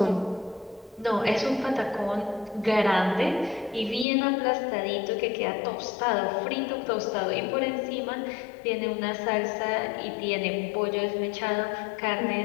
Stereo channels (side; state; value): right; drops out; at 4.0 s